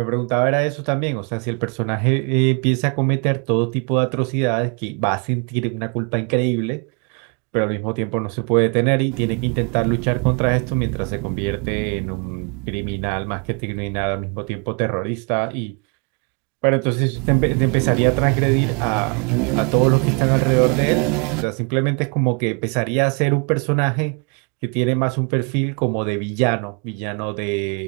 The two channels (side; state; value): left; quieter; 35.2 dB